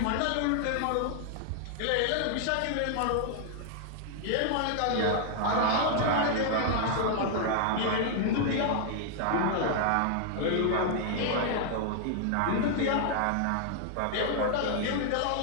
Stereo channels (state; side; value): different; both; correlation -0.01